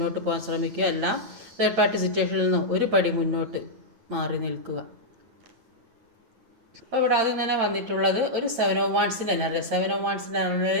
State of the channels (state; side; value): late; left; 8.8 ms